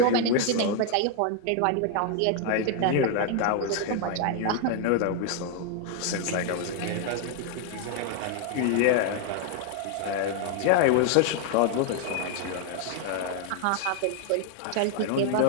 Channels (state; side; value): different; both; correlation 0.00